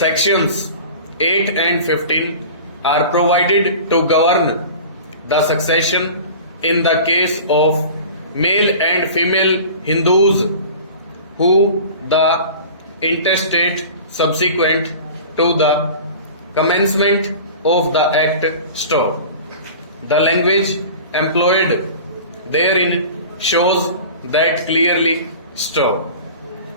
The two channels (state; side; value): inverted; both; correlation -0.39